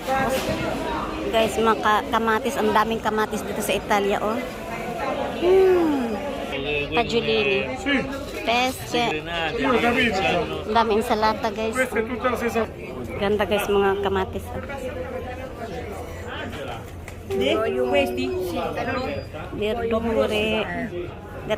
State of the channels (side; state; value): both; identical; correlation 1.00